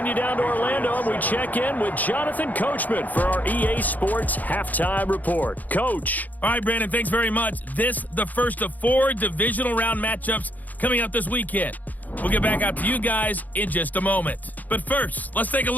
you down to Orlando, and we check in with Jonathan Coachman for our EA Sports Halftime Report. Coach. All right, Brandon, thanks very much. This the first of 4 Divisional Round matchups coming up this weekend. We'll get back out to you guys in just a moment. But first, let's take a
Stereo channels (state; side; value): late; right; 0.081 ms